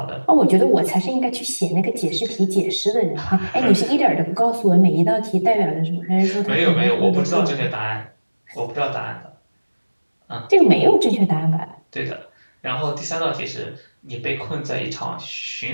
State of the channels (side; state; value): both; inverted; correlation -1.00